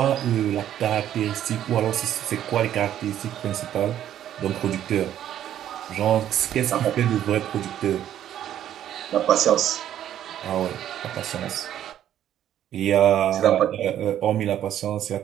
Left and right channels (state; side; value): quieter; left; 11.1 dB